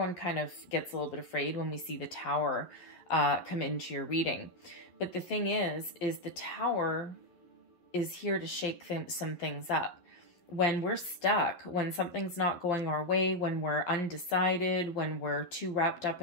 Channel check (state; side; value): late; right; 11 ms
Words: kind of gets a little bit afraid when we see the Tower come into your reading. But the thing is the Tower is here to shake some things up. When we're stuck, when something's not going our way, when we're undecided, when we're too wrapped up